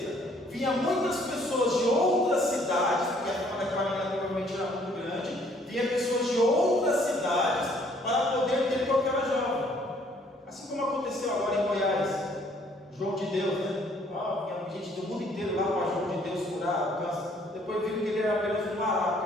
vinha muitas pessoas de outras cidades, porque aquela menina provavelmente era muito grande, vinha pessoas de outras cidades para poder ter com aquela jovem. Assim como aconteceu agora em Goiás, João de Deus, né? Vinha gente do mundo inteiro lá para João de Deus curar o câncer. Depois viram que ele era apenas um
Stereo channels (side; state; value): both; normal; correlation 0.62